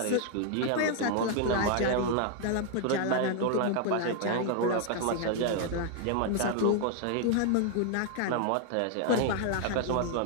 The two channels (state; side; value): different; both; correlation 0.00